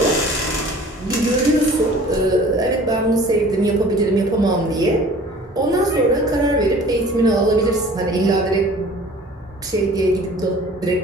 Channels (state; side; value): normal; both; correlation 0.47